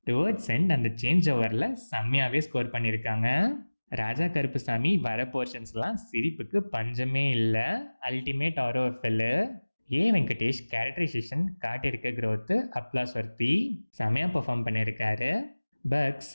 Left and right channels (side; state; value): both; inverted; correlation -1.00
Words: டுவர்ட்ஸ் எண்ட் அந்த சேஞ்ச் ஓவரில் செம்மையாகவே ஸ்கோர் பண்ணியிருக்காங்க. ராஜா கருப்புசாமி வர போர்ஷன்ஸ்லாம் சிரிப்புக்கு பஞ்சமே இல்லை. அல்டிமேட் ஆரோஃபெல்லு. ஏ வெங்கடேஷ் கேரக்டரைசேஷன் காட்டியிருக்க க்ரோத்து அப்ளாஸ் வர்த்தி. செமையாக பெர்ஃபார்ம் பண்ணியிருக்காரு. பக்ஸ்